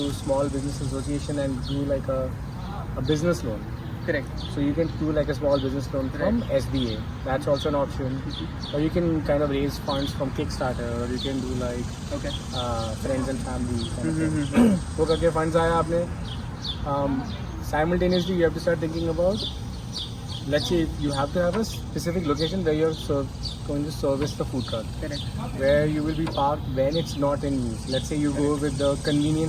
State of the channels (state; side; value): identical; both; correlation 1.00